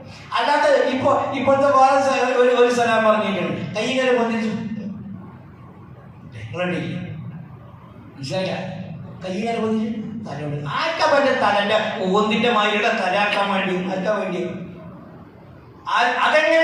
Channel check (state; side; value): identical; both; correlation 1.00